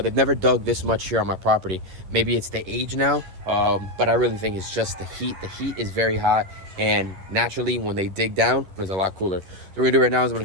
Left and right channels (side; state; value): left; late; 11 ms